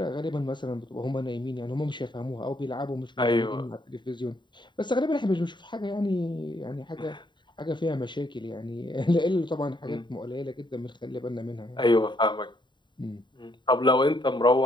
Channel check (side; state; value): right; late; 0.22 ms